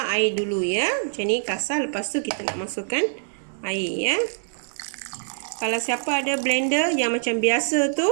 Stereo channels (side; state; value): left; silent; 62 dB below the other